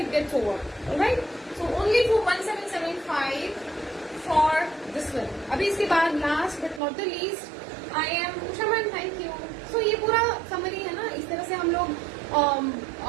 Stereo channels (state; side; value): drops out; left; at 6.8 s